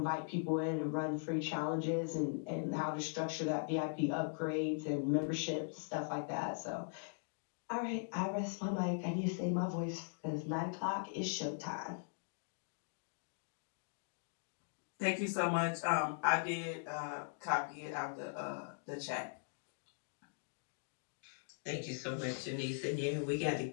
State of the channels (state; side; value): silent; right; digital silence